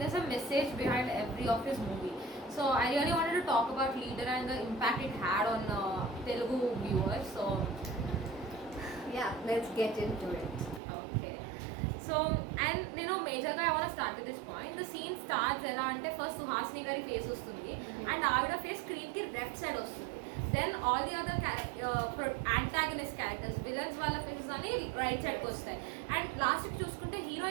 there's a message behind every of his movie. So I really wanted to talk about Leader and the impact it had on Telugu viewers. So yeah, let's get into it. Okay. So, and majorగా I want to start at this point. The scene starts ఎలా అంటే ఫస్ట్ సుహాసిని గారి ఫేస్ వస్తుంది and ఆవిడ face స్క్రీన్కి left side వస్తుంది. Then all the other antagonist characters villains వాళ్ళ faces అని రైట్ సైడ్కి వస్తాయి. అండ్ లాస్ట్కి చూసుకుంటే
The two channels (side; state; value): left; drops out; at 10.8 s